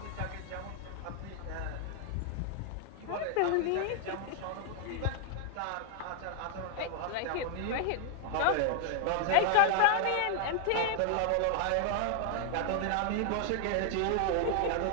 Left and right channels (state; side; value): different; both; correlation 0.00